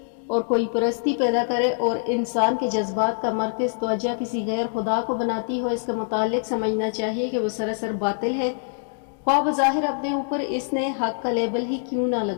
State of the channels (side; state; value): right; silent; digital silence